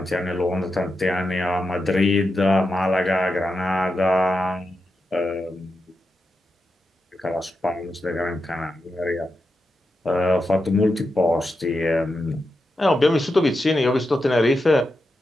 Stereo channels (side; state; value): both; normal; correlation 0.88